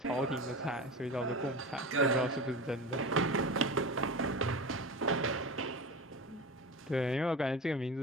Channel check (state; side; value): normal; both; correlation 0.29